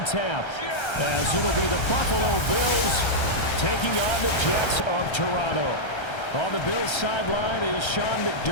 tap, as it'll be the Buffalo Bills taking on the Jets of Toronto. On the Bills sideline is Sean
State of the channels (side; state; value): right; late; 1.3 ms